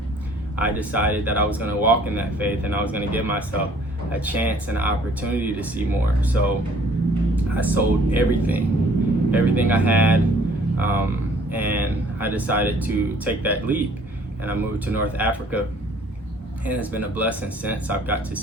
I decided that I was going to walk in that faith, and I was going to give myself a chance and an opportunity to see more. So I sold everything I had, and I decided to take that leap, and I moved to North Africa, and it's been a blessing since. I've got to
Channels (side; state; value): both; normal; correlation 0.57